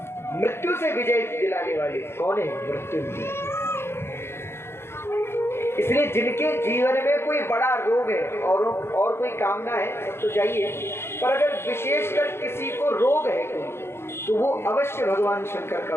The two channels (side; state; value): right; late; 0.12 ms